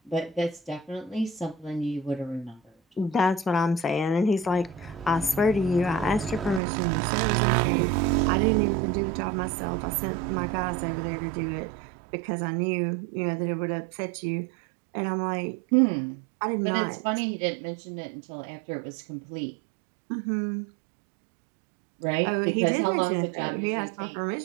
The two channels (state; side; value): drops out; left; at 6.6 s